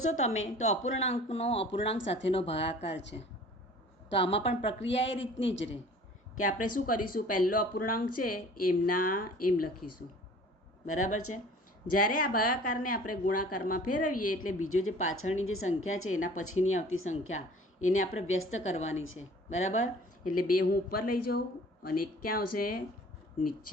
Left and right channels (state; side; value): normal; both; correlation 0.48